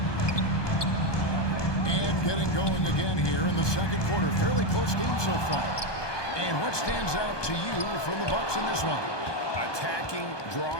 And getting going again here in the second quarter. Fairly close game so far. And what stands out to you from the Bucks in this one? Attacking,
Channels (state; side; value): late; right; 1.2 ms